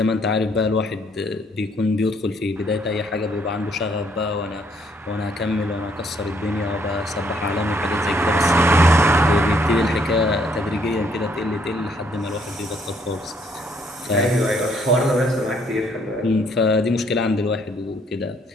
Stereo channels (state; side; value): normal; both; correlation 0.67